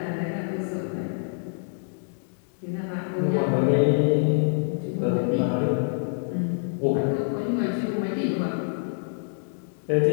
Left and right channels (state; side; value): silent; right; digital silence